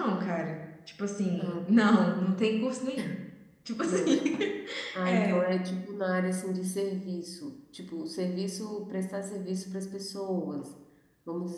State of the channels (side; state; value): both; identical; correlation 1.00